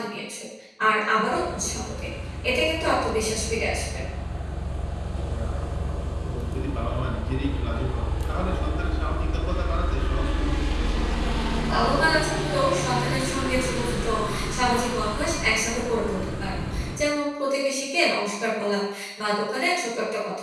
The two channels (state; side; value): identical; both; correlation 1.00